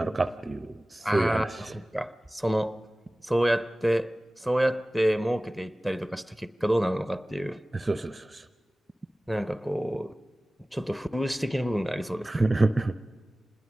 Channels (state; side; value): normal; both; correlation 0.97